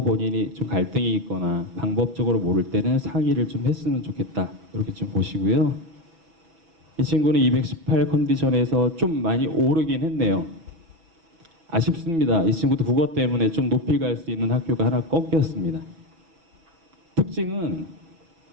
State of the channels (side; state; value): left; late; 6.1 ms